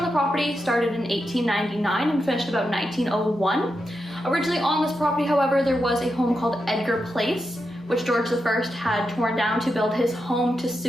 the property started in 1899 and finished about 1901. Originally on this property, however, there was a home called Edgar Place, which George I had torn down to build his home to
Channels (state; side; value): normal; both; correlation 0.87